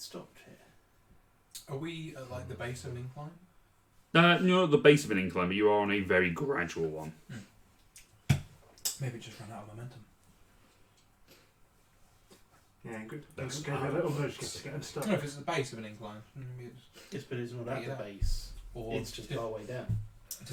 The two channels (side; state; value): both; identical; correlation 1.00